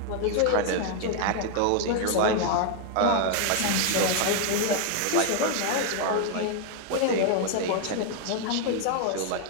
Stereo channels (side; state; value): both; different; correlation 0.00